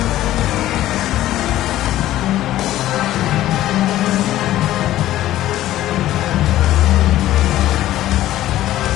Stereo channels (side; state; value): right; quieter; 14.2 dB